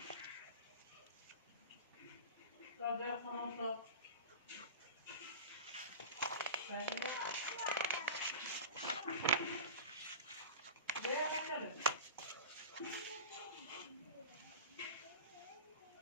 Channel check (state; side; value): inverted; both; correlation -0.31